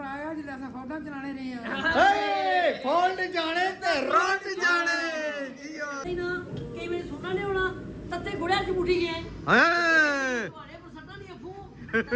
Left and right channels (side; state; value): both; identical; correlation 1.00